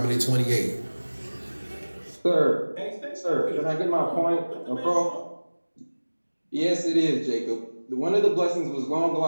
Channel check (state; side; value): inverted; both; correlation -1.00